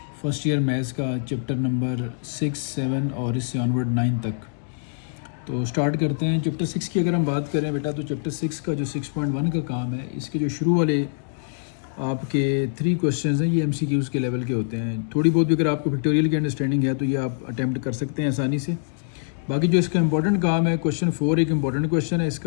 फ़र्स्ट ईयर मैथ्स का चैप्टर नंबर 6, 7 और इससे ऑनवर्ड 9 तक। तो स्टार्ट करते हैं। चैप्टर 6 की अगर हम बात करें बेटा, तो चैप्टर 6 का जो 6.1 का काम है, इसके जो शुरू वाले आपके 3 क्वेश्चंस हैं, ये MCQs के लेवल के होते हैं। थोड़ी बहुत भी अगर आपको पिक्टोरियल की अंडरस्टैंडिंग है तो ये आप अटैम्प्ट कर सकते हैं आसानी से। बाकी जो इसका इंपॉर्टेंट काम है, क्वेश्चन 4 एक इंपॉर्टेंट क्वेश्चन है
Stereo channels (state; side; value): silent; right; digital silence